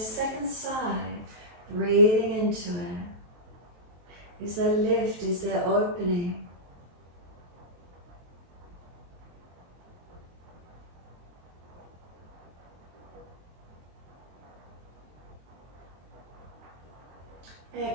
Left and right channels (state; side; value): late; left; 23 ms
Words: second side? Breathing into it. Is there lift? Is there opening?